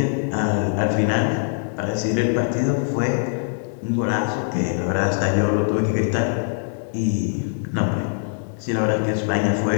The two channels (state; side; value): silent; right; 64 dB below the other